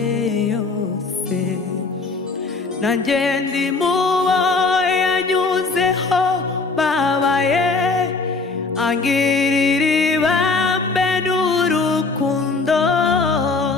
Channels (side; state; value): right; quieter; 4.0 dB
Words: yose nanjye ndi mubo yanyuzeho babaye angirira ibambe n'urukundo